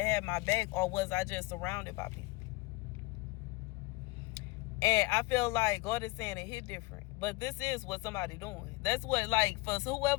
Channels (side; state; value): right; quieter; 22.8 dB